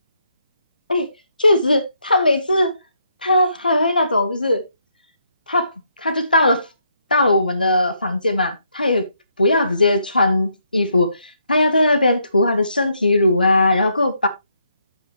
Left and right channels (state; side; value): inverted; both; correlation -0.75